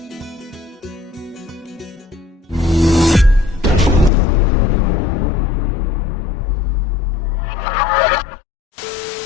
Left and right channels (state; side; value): drops out; right; at 4.1 s